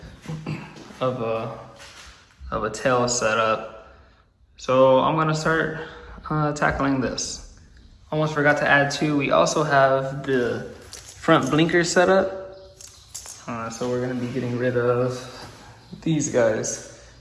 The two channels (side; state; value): both; identical; correlation 1.00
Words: of a tail setup. So I'm gonna start tackling this. Almost forgot to add too, we also have the front blinker setup. So we're gonna be getting rid of these guys